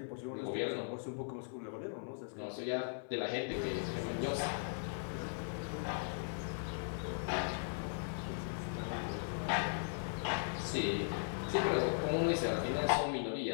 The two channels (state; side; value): silent; right; digital silence